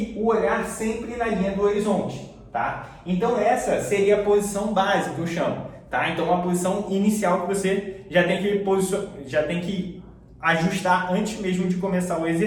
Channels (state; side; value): identical; both; correlation 1.00